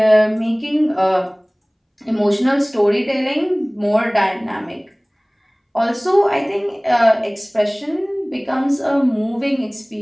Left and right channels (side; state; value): both; identical; correlation 1.00